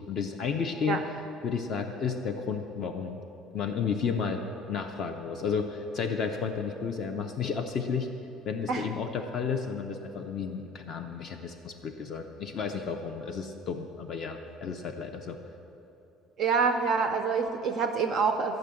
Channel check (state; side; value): normal; both; correlation 0.42